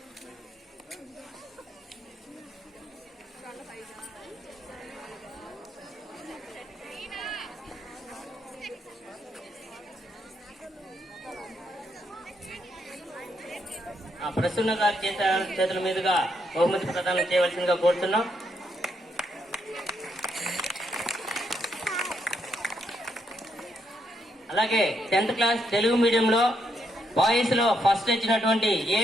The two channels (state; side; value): normal; both; correlation 0.77